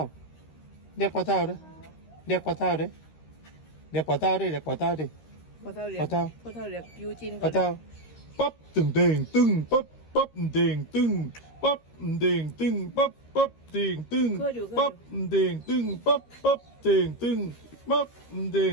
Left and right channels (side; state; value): right; late; 13 ms